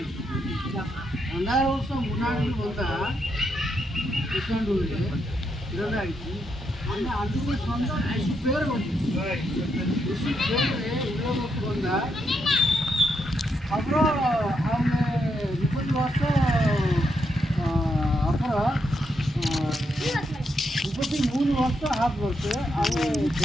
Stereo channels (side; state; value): both; normal; correlation 0.80